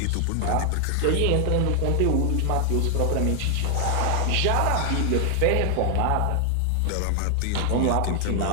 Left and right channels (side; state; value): both; different; correlation 0.00